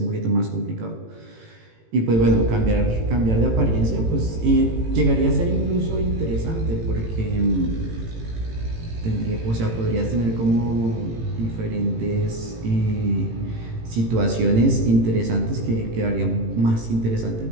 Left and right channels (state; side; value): late; left; 18 ms